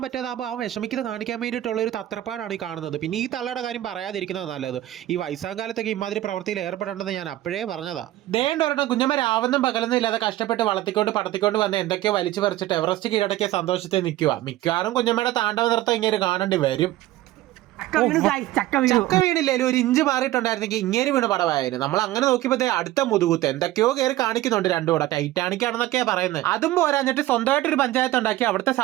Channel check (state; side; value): quieter; left; 15.3 dB